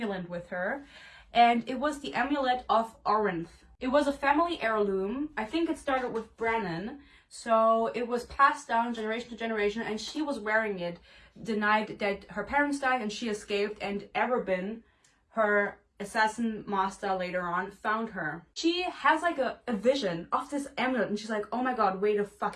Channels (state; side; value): identical; both; correlation 1.00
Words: with her, and it was the amulet of Orinth. It was a family heirloom. I think it started with Brennan, so it was passed down generation to generation, and she was wearing it the night that her parents died and she escaped, and Erebin, her assassin master later on, found her. She has like a vision of this amulet and she's like, oh my god, wait a